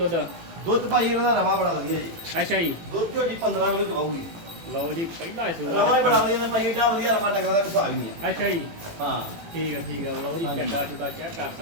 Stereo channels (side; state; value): left; late; 18 ms